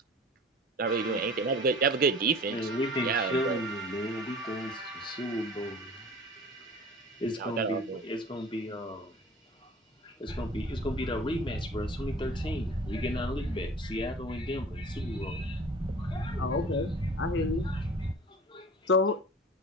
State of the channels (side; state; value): both; normal; correlation 0.42